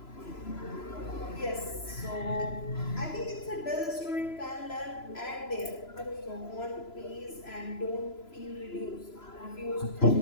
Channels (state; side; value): late; right; 3.0 ms